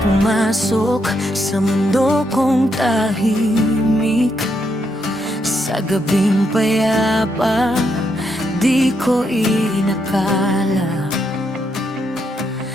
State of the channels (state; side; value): normal; both; correlation 0.79